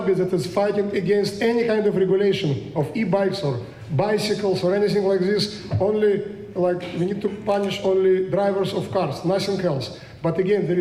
that is fighting against any kind of regulation of e-bikes or bicycles or anything like this. Only like we need to punish only drivers of cars, nothing else. But again, there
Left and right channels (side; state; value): both; identical; correlation 1.00